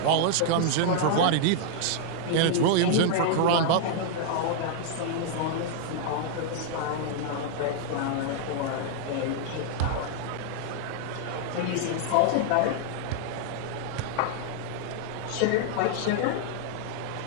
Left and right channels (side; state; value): both; different; correlation -0.01